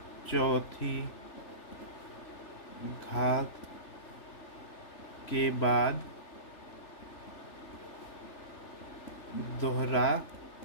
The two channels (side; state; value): right; late; 3.4 ms